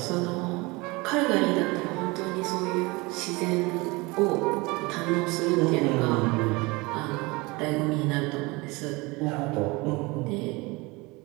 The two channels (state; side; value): quieter; left; 24.4 dB